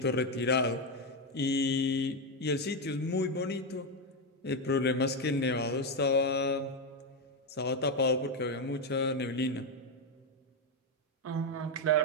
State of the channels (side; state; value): both; normal; correlation 0.07